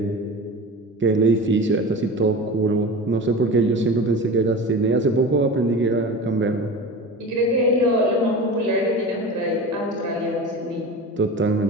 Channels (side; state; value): both; normal; correlation 0.32